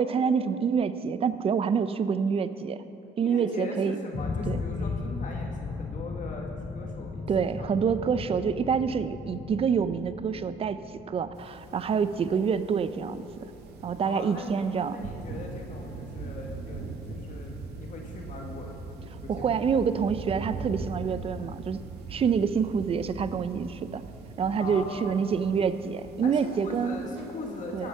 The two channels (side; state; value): left; quieter; 5.1 dB